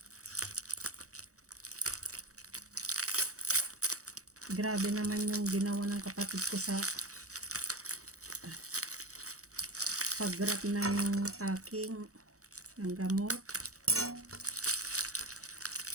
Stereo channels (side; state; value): left; late; 0.65 ms